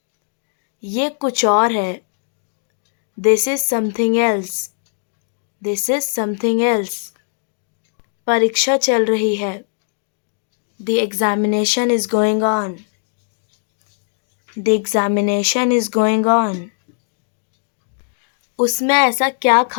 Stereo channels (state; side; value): silent; right; digital silence